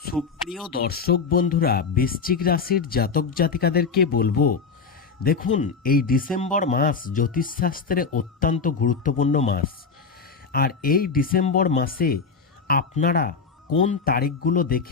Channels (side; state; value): right; quieter; 5.3 dB